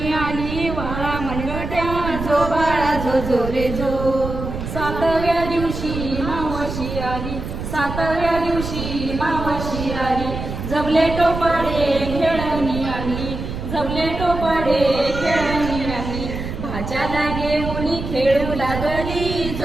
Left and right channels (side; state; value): right; noise; rumble, 6 dB below the sound